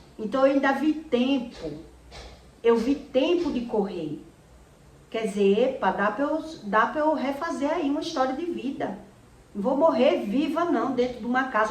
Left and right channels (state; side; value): identical; both; correlation 1.00